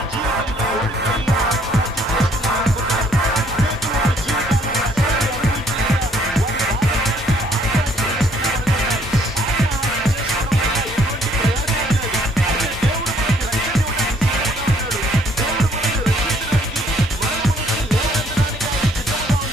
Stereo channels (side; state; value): both; normal; correlation 0.64